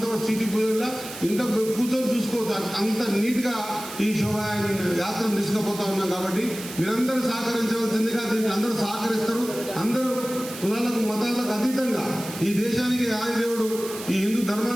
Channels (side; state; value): right; noise; hiss, 12 dB below the sound